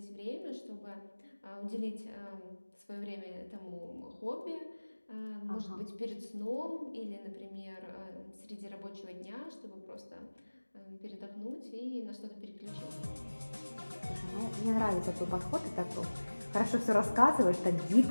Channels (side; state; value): both; inverted; correlation -1.00